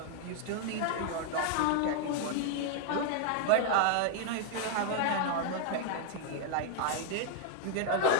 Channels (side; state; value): both; different; correlation 0.00